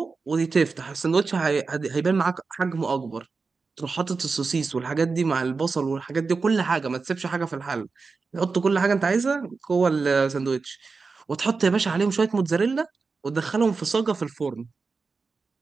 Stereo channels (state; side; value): quieter; left; 4.5 dB